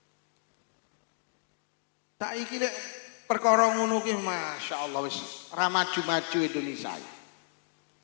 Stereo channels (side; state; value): right; silent; digital silence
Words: Saiki lek perkara ngono ki masyaallah wis ra maju-maju Indonesia.